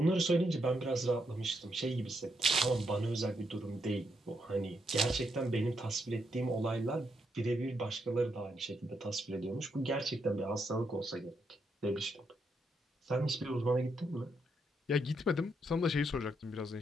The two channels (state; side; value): normal; both; correlation 0.79